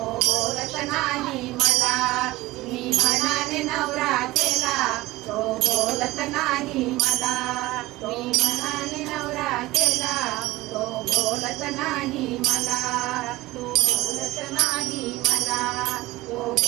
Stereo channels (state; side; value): quieter; left; 18.6 dB